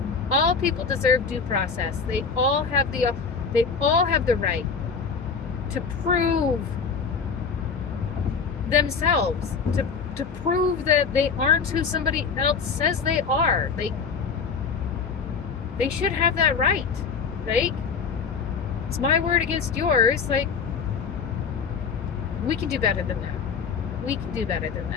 deserve due process. They all have the right to prove themselves, to prove that they aren't who somebody else says they are. They should have that right. Like, it's my word against yours. Like, we can do better than that. We can do better than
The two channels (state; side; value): quieter; right; 5.6 dB